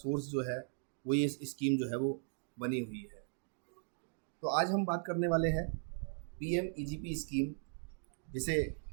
जो है वो ये स्कीम जो है वो बनी हुई है। तो आज हम बात करने वाले हैं पीएमईजीपी स्कीम, जिसे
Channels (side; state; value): left; silent; digital silence